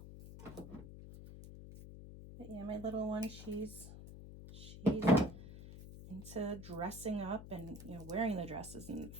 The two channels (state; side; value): noise; left; hum, 13 dB below the sound